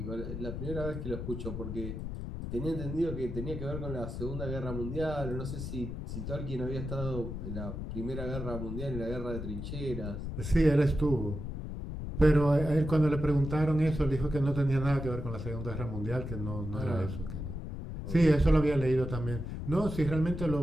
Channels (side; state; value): left; noise; rumble, 6 dB below the sound